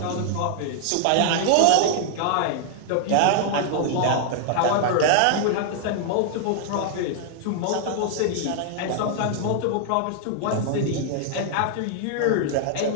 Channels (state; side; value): different; both; correlation 0.00